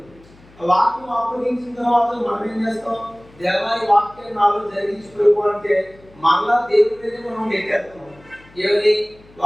ఆ వాక్యం అప్పగించిన తర్వాత మనం ఏం చేస్తాం? దేవా, ఈ వాక్యాన్ని నాలో జరిగించుకో అంటే మళ్ళా దేవుడి మీద మనం నెట్టేస్తాం. ఏమని?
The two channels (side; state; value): left; noise; hum, 26 dB below the sound